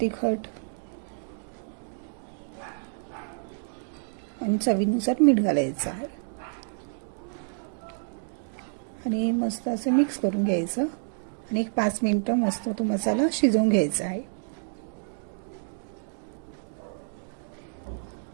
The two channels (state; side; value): silent; left; 59 dB below the other